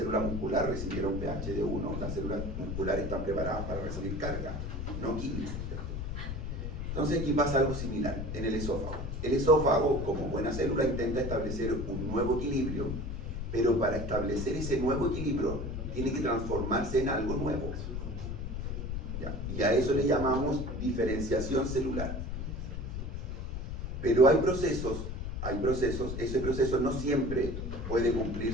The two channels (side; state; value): left; noise; rumble, 5 dB below the sound